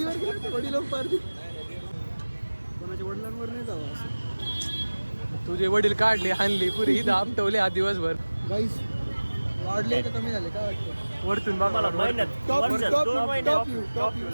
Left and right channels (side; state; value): both; inverted; correlation -1.00